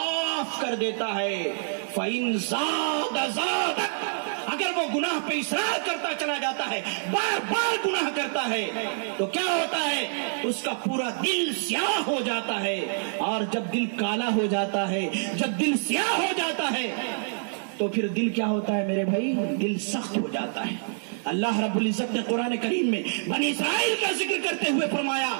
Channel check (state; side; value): silent; left; digital silence